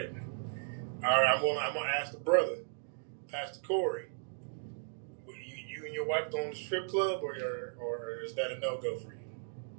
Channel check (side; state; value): left; silent; digital silence